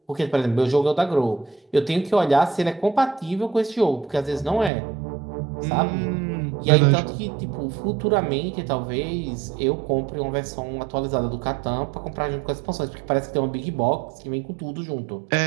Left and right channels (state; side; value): drops out; left; at 4.7 s